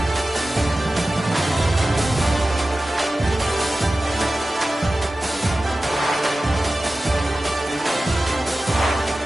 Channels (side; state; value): both; normal; correlation 0.95